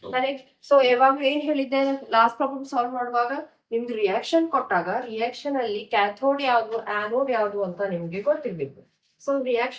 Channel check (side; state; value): both; identical; correlation 1.00